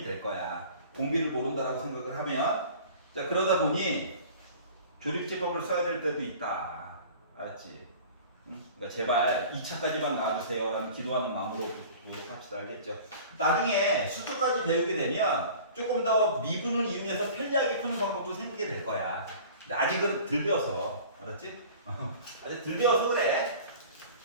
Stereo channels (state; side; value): inverted; both; correlation -0.43